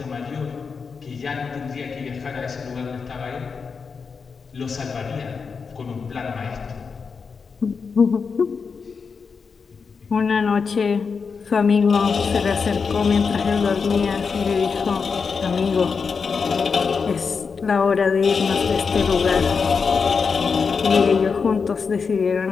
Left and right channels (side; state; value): right; quieter; 5.4 dB